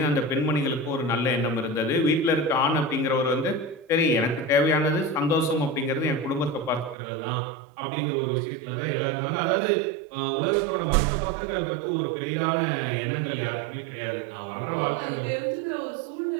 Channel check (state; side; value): drops out; left; at 7.0 s